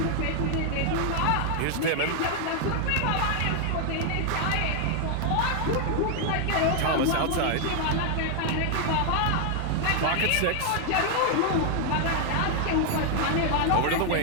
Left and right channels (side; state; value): both; different; correlation 0.00